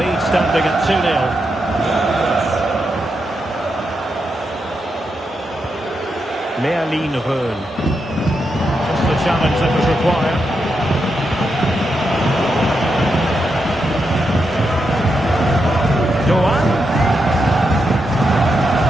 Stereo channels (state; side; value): normal; both; correlation 0.84